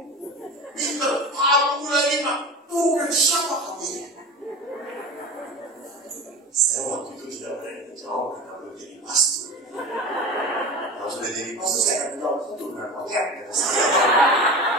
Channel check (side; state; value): both; normal; correlation 0.31